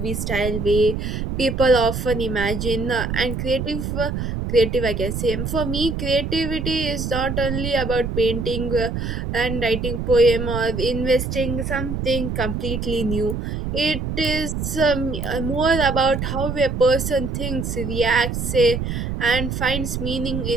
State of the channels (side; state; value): right; noise; rumble, 3 dB below the sound